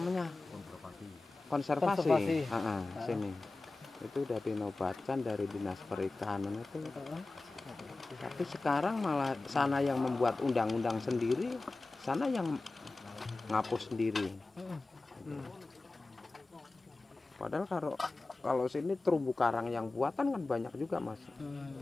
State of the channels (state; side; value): quieter; right; 3.3 dB